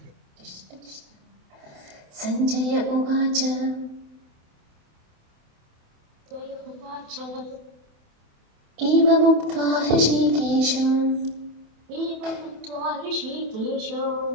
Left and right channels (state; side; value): late; left; 28 ms